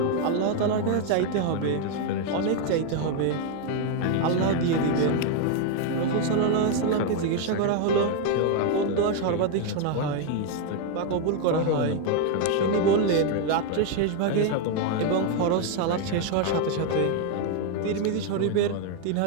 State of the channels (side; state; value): both; different; correlation 0.01